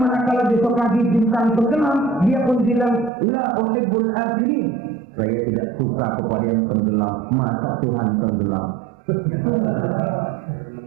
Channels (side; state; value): left; drops out; at 3.1 s